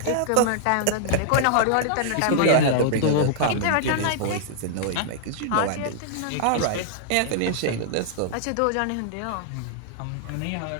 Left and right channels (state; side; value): different; both; correlation -0.01